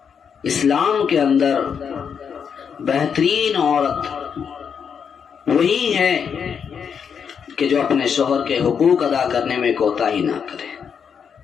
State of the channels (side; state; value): right; quieter; 7.0 dB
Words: اسلام کے اندر بہترین عورت وہی ہے کہ جو اپنے شوہر کے حقوق ادا کرنے میں کوتاہی نہ کرے،